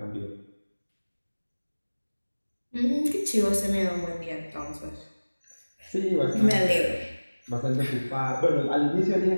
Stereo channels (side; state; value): both; inverted; correlation -1.00